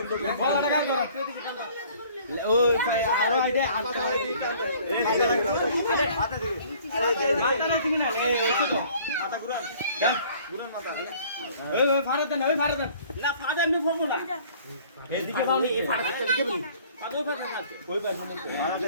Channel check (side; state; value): both; inverted; correlation -0.54